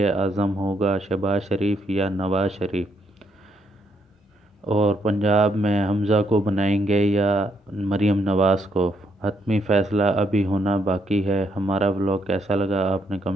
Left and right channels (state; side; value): normal; both; correlation 0.74